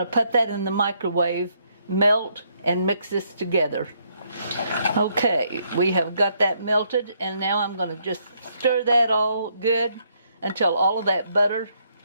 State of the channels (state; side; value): inverted; both; correlation -0.72